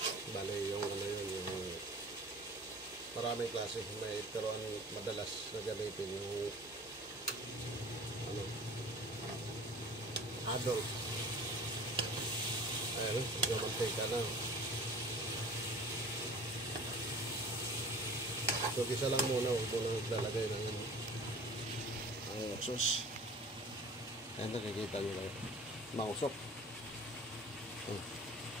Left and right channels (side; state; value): both; normal; correlation 0.43